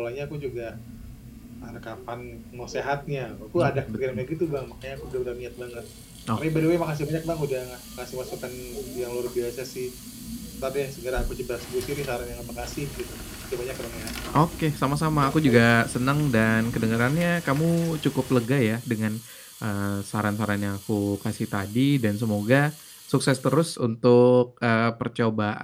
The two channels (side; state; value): both; identical; correlation 1.00